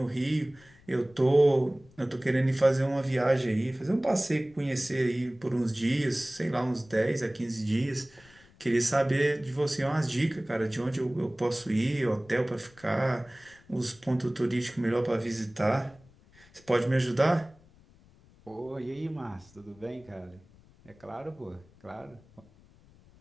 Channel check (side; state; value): left; noise; rumble, 27 dB below the sound